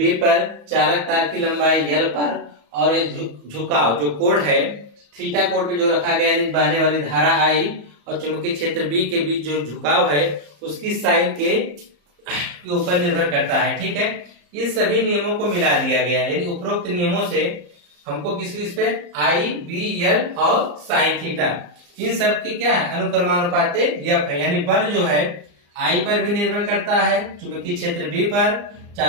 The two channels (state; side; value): late; left; 34 ms